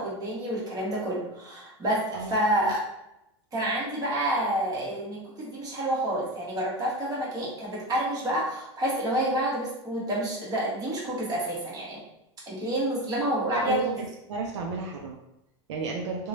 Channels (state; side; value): normal; both; correlation 0.21